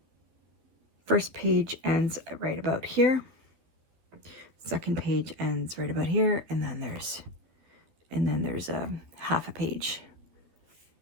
first page ends right about here. Second page ends right about here, and then there's a half a page.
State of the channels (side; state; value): left; late; 13 ms